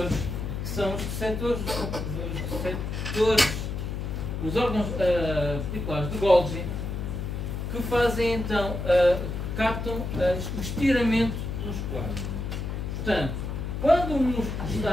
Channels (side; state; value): left; noise; hum, 4 dB below the sound